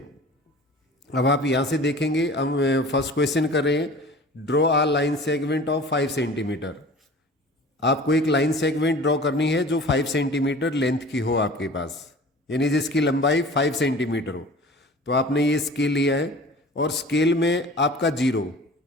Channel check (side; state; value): both; normal; correlation 0.42